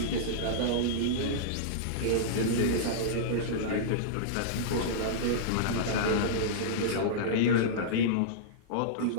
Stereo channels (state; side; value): different; both; correlation -0.03